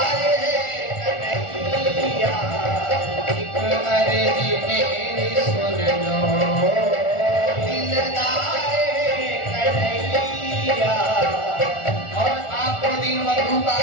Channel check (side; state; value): right; late; 1.4 ms